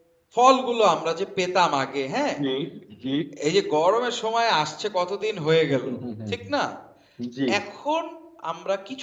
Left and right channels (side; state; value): both; identical; correlation 1.00